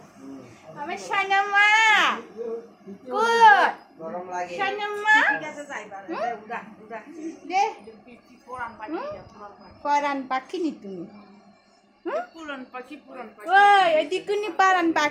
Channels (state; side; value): identical; both; correlation 1.00